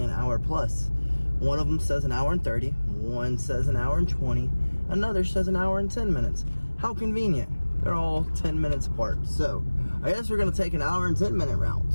an hour plus. One of them says an hour and 30. One says an hour and 20. Another says an hour and 10 minutes. How convenient. They're all 10 minutes apart. So I guess we're going to take an hour and 10 minute route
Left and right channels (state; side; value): inverted; both; correlation -1.00